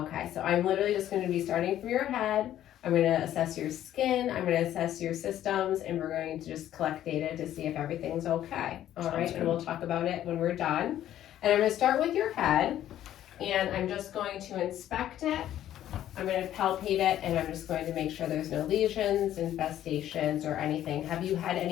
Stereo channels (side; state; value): right; quieter; 12.0 dB